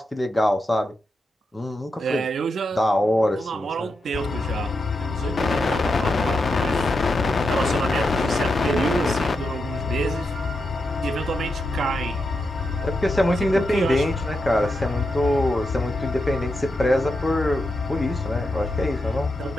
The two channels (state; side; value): normal; both; correlation 0.86